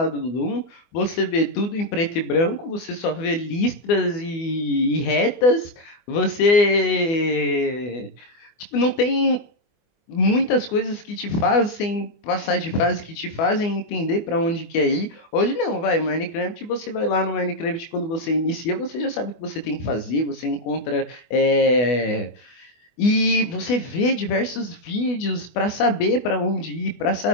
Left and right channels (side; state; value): right; late; 24 ms